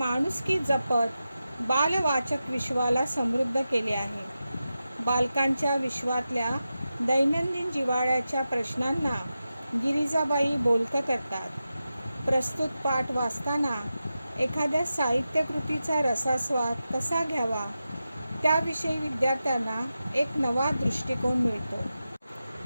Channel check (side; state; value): both; inverted; correlation -0.92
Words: जपत बालवाचक विश्वाला समृद्ध केले आहे. बालकांच्या विश्वातल्या दैनंदिन जिव्हाळ्याच्या प्रश्नांना गिरिजाबाई बोलकं करतात. प्रस्तुत पाठ वाचताना एखाद्या साहित्यकृतीचा रसास्वाद कसा घ्यावा त्याविषयी विद्यार्थ्यांना एक नवा दृष्टिकोन मिळतो.